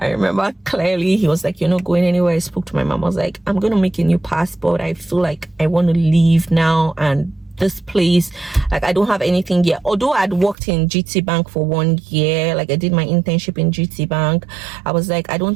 remember clearly, he was like, "You're not going anywhere." I spoke to my mom. I was like, "I'm going to make a new passport. I feel like I want to leave now, and this place, like I don't have anything yet." Although I'd worked in GT Bank for 1 year, like I did my internship in GT Bank, I was like, I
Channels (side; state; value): left; drops out; at 10.6 s